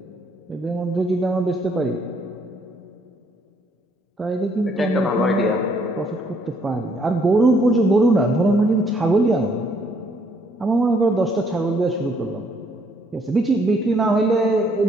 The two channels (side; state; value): both; normal; correlation 0.67